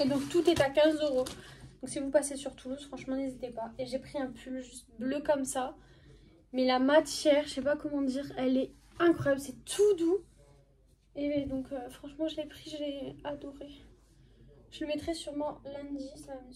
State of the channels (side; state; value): both; identical; correlation 1.00